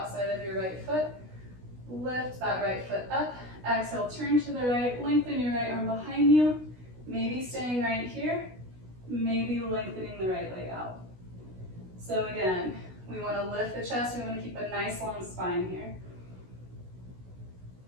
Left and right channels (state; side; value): late; left; 16 ms